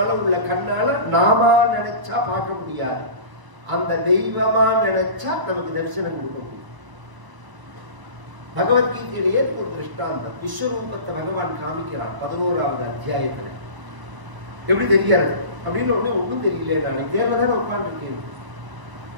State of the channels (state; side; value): late; left; 1.0 ms